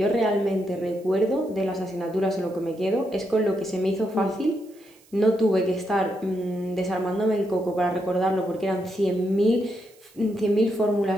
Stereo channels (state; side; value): noise; right; hiss, 29 dB below the sound